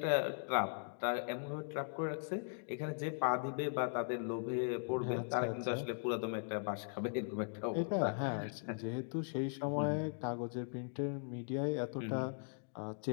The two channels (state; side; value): silent; right; digital silence